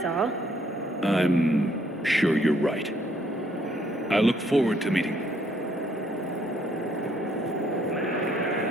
all. I'm sure you're right. I look forward to meeting you.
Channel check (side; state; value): both; normal; correlation 0.67